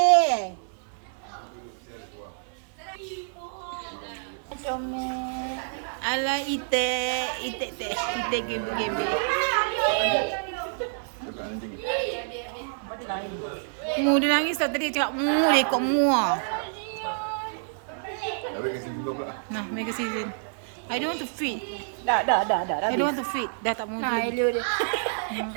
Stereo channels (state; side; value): silent; left; digital silence